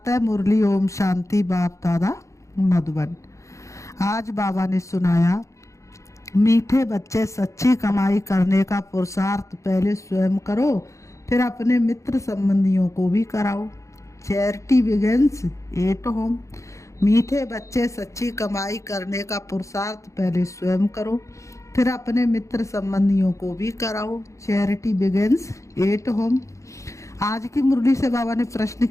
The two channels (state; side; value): late; right; 0.15 ms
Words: मुरली ओम शांति बाप दादा मधुबन। आज बाबा ने सुनाया, मीठे बच्चे सच्ची कमाई करने का पुरुषार्थ पहले स्वयं करो, फिर अपने मित्र संबंधियों को भी कराओ। Charity begins at home. मीठे बच्चे सच्ची कमाई करने का पुरुषार्थ पहले स्वयं करो, फिर अपने मित्र संबंधियों को भी कराओ। Charity begins at home. आज की मुरली से बाबा ने प्रश्न